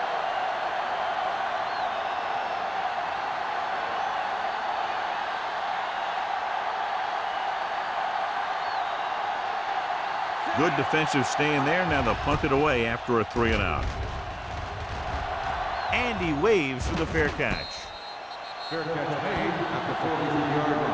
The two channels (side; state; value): both; identical; correlation 1.00